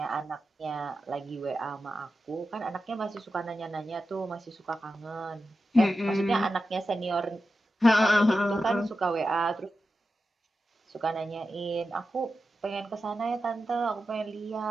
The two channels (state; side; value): normal; both; correlation 0.91